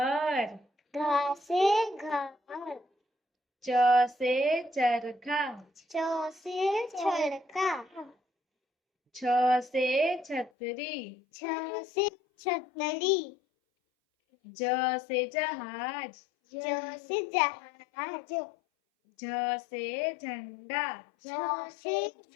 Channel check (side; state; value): right; drops out; at 10.5 s